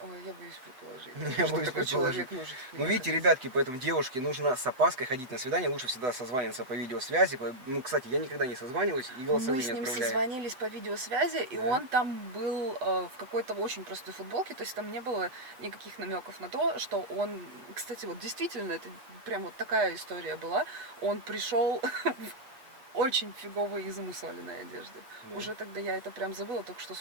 Ой, я боюсь предположить. Я что боюсь такой предположить. человек может. Ну, видите, ребятки, поэтому девушке нужно с опаской ходить на свидание, лучше всегда созваниваться по видеосвязи. Ну, кстати, я никогда не созваниваюсь и голосовые Мы с не ним отправляю. созвонились по видеосвязи, и Да. он там был в какой-то очень простой футболке, то есть там не было никаких намеков на то, что он, кстати, вот действительно, это прям вот такая история была, он пришел в очень фиговой и замусоленной одежде. Да. Уже тогда я это прям забыла, только что,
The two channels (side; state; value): left; late; 7.8 ms